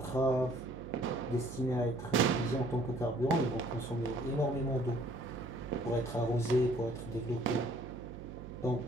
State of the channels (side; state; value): right; noise; hum, 12 dB below the sound